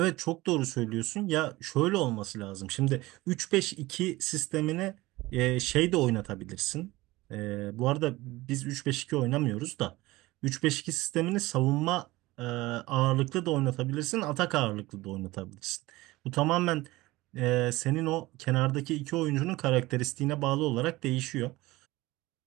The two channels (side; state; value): left; quieter; 19.6 dB